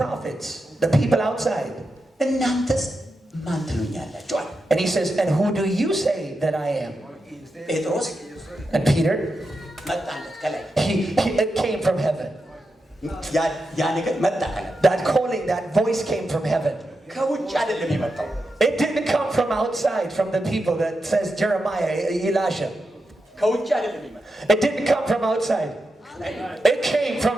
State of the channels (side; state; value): both; normal; correlation 0.88